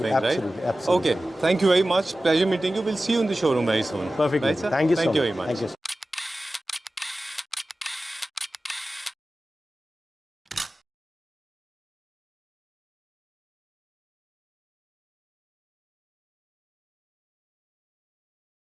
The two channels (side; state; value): both; normal; correlation 0.95